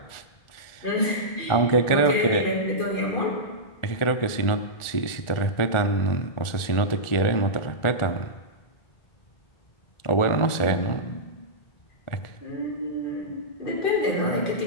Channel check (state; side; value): late; right; 1.4 ms